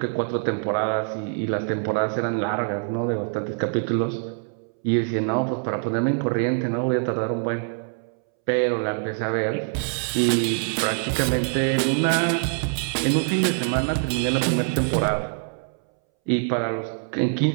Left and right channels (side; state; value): left; silent; 62 dB below the other